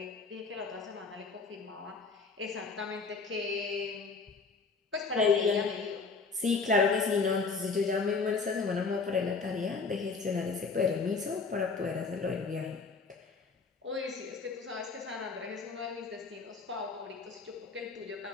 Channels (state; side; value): quieter; right; 4.5 dB